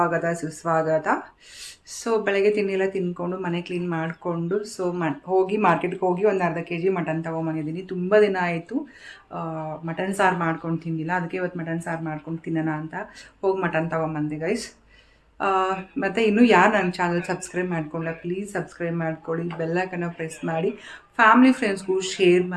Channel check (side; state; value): both; identical; correlation 1.00